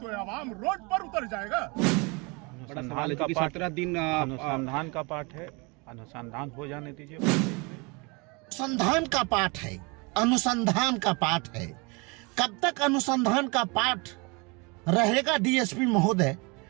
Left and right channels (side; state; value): left; quieter; 28.9 dB